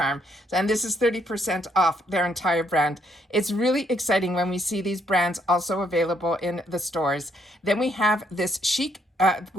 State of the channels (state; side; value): normal; both; correlation 0.72